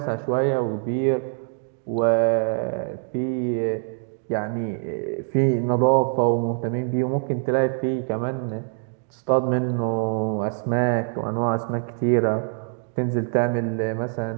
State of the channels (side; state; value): left; silent; 61 dB below the other